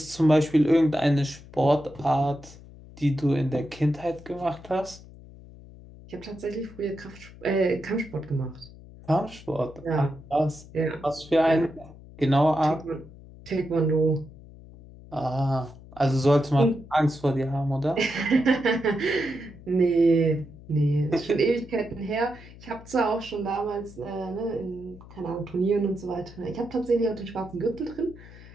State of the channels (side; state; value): left; noise; hum, 19 dB below the sound